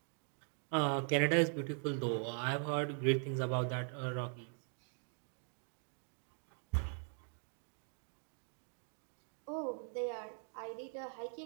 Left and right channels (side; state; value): left; silent; 50 dB below the other